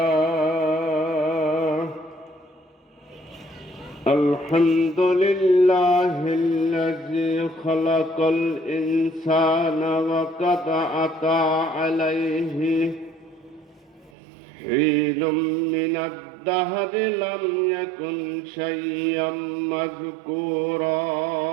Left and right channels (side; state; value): left; drops out; at 14.1 s